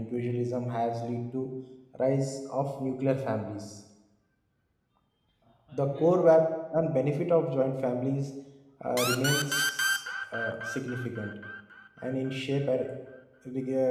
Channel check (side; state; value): both; identical; correlation 1.00